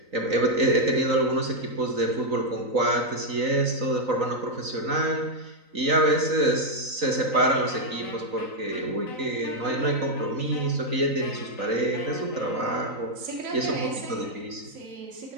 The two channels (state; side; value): late; left; 3.9 ms